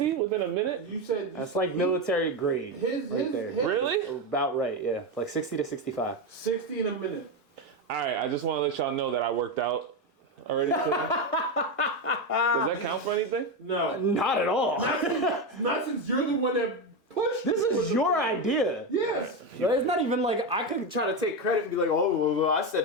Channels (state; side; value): normal; both; correlation 0.12